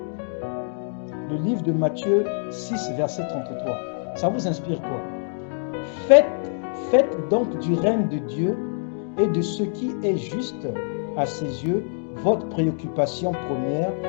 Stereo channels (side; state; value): right; silent; digital silence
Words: Le livre de Matthieu 6, verset 33. Ça vous inspire quoi? Faites donc du règne de Dieu et de ce qui est juste à ses yeux votre préoccupation première,